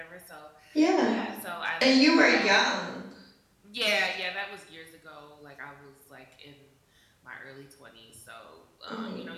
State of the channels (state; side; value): identical; both; correlation 1.00